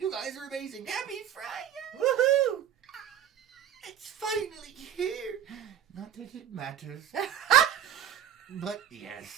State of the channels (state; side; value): quieter; left; 9.6 dB